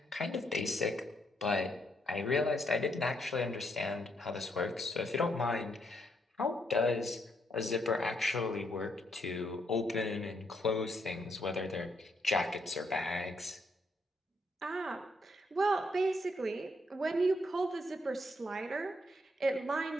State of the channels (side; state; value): both; normal; correlation 0.75